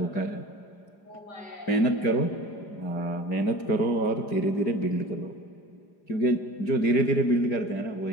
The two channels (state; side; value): late; right; 4.9 ms